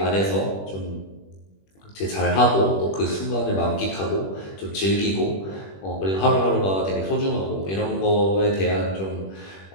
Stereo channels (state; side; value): late; right; 21 ms